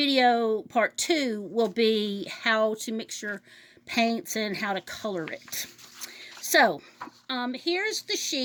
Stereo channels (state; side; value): identical; both; correlation 1.00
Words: part two will be how to mix your paints and how to color it. So here's the